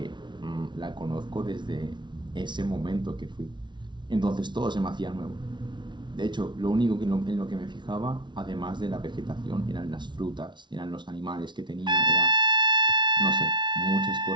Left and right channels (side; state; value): left; late; 0.23 ms